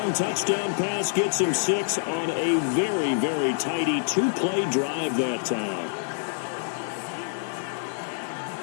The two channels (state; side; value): silent; right; digital silence